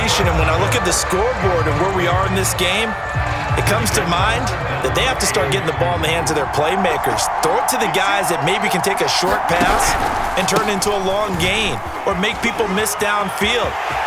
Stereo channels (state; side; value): identical; both; correlation 1.00